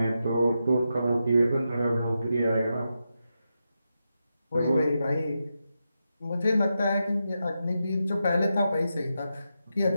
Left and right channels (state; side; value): inverted; both; correlation -0.87